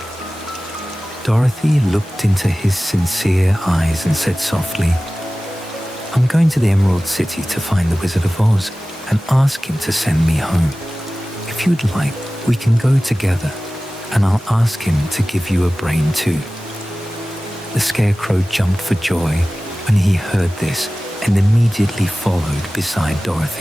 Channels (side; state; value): both; normal; correlation 0.97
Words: Dorothy looked into his sincere eyes and said softly, "I'm going to the Emerald City to find the Wizard of Oz and ask him to send me home. If you'd like, we can go together, and I'll ask him to give you a brain too." The scarecrow jumped for joy when he heard this and immediately followed beside